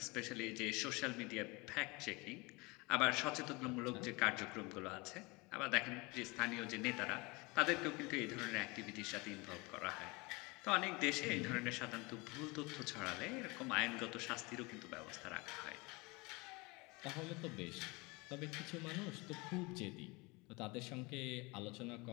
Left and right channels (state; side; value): quieter; right; 25.9 dB